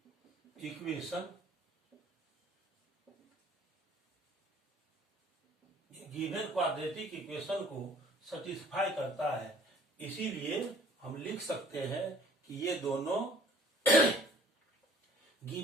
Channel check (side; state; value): both; normal; correlation 0.54